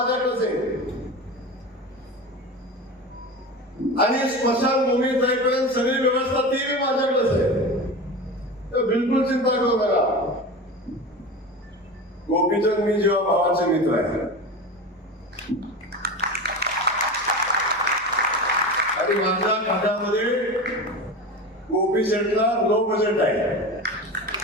आहे. आणि स्मशानभूमीत जाईपर्यंत सगळी व्यवस्था ती माझ्याकडेच आहे. तर बिलकुल चिंता करू नका. गोपीचंद मी जेव्हा भावाचे मित्र आहे आणि माझ्या खात्यामध्ये गोपी शेटला लो बजेट आहे.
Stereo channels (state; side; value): normal; both; correlation 0.28